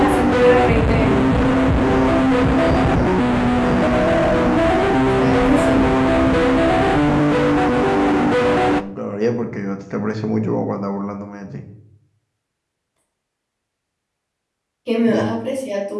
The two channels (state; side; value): identical; both; correlation 1.00